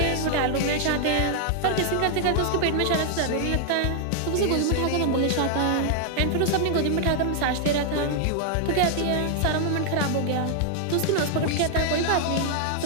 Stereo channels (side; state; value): both; different; correlation 0.00